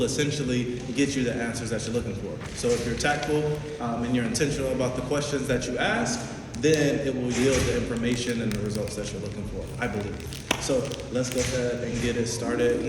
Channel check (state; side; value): identical; both; correlation 1.00